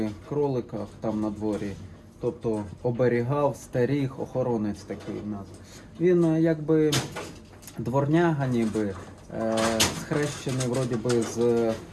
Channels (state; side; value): identical; both; correlation 1.00